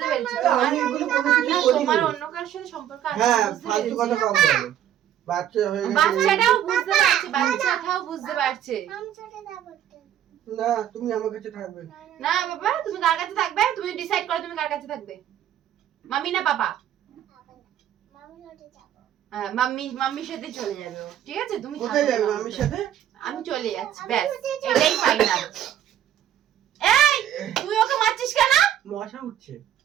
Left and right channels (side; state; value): left; quieter; 11.0 dB